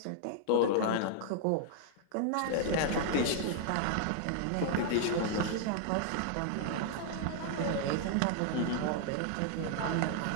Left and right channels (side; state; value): both; different; correlation -0.01